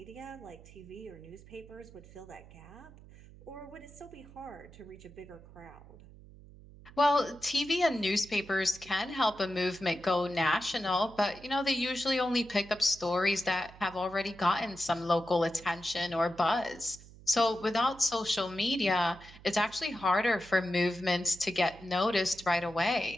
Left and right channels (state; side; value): noise; right; hum, 20 dB below the sound